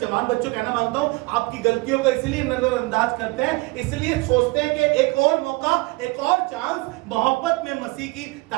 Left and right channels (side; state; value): left; quieter; 23.9 dB